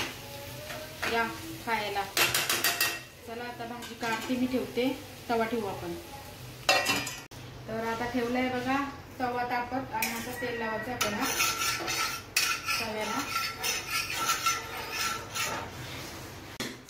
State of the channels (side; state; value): both; identical; correlation 1.00